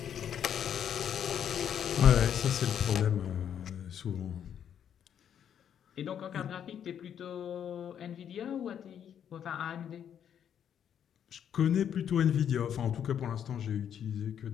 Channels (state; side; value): quieter; right; 9.0 dB